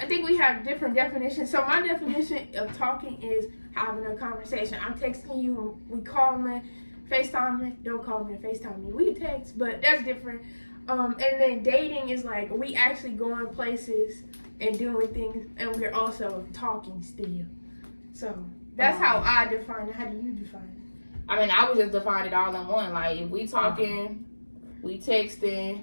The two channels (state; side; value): inverted; both; correlation -1.00